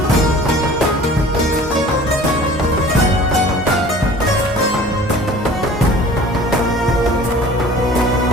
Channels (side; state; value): both; normal; correlation 0.46